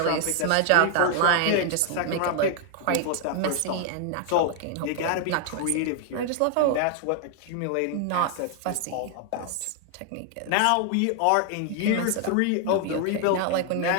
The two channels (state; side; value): different; both; correlation 0.00